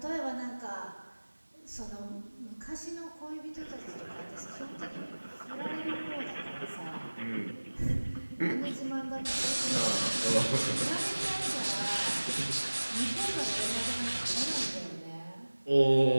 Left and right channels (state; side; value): inverted; both; correlation -1.00